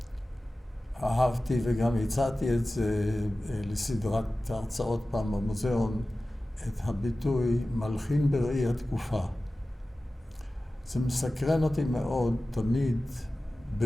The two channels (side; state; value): both; normal; correlation 0.96